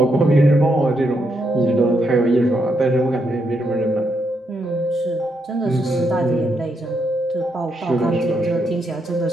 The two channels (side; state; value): both; normal; correlation 0.79